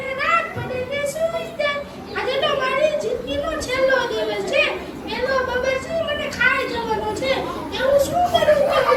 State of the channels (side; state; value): both; identical; correlation 1.00